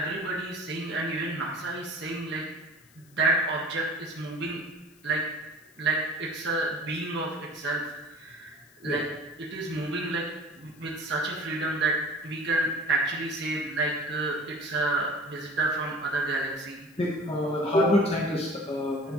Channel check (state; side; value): noise; left; hiss, 28 dB below the sound